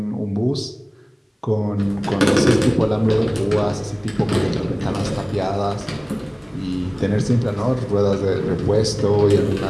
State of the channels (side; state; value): both; identical; correlation 1.00